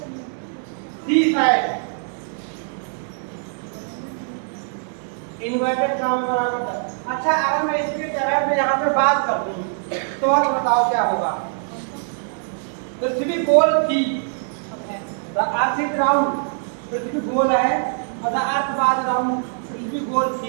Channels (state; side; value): silent; left; digital silence